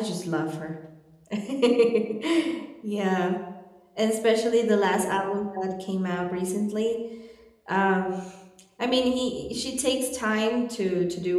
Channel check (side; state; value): both; identical; correlation 1.00